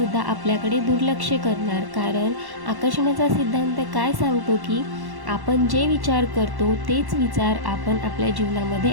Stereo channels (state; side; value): late; left; 1.1 ms